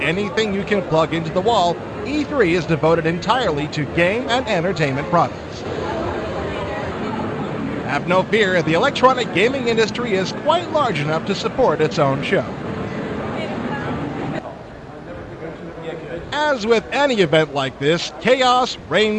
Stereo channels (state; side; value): identical; both; correlation 1.00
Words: anything you can plug into the wall, E3 is devoted entirely to game and entertainment products. Have no fear, the electronic gaming industry is quite large enough to support its own show. As with any event like this, chaos